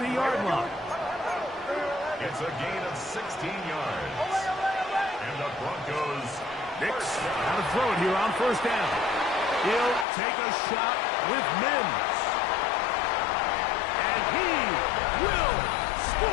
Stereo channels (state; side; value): drops out; right; at 10.1 s